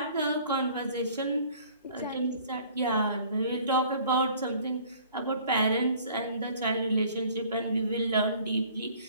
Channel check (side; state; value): both; inverted; correlation -0.53